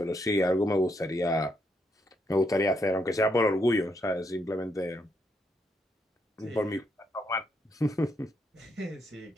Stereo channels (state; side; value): normal; both; correlation 0.77